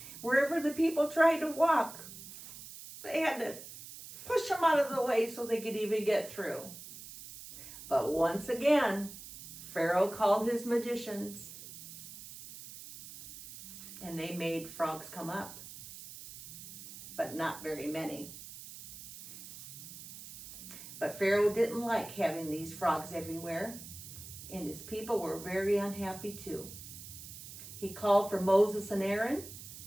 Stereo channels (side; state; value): right; noise; hiss, 13 dB below the sound